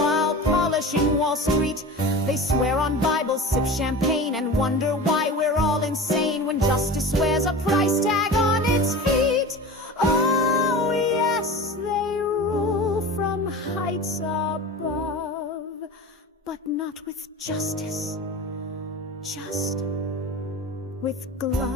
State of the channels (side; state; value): both; normal; correlation 0.32